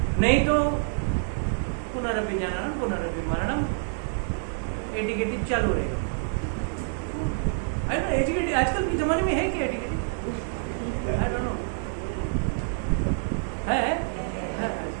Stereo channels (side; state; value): left; silent; digital silence